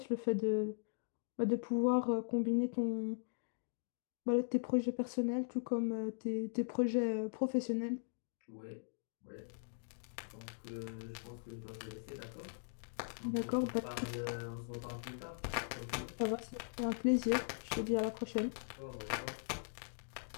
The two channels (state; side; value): silent; right; digital silence